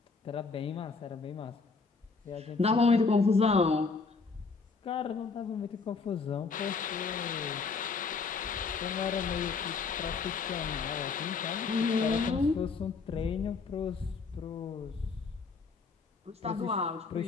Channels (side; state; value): right; quieter; 4.6 dB